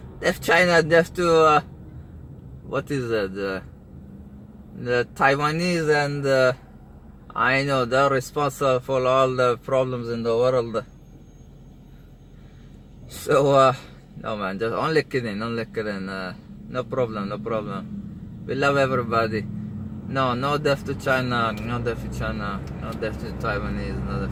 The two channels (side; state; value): both; identical; correlation 1.00